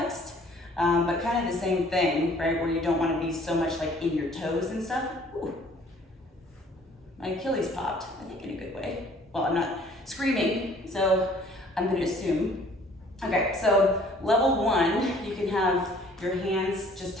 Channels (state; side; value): normal; both; correlation 0.56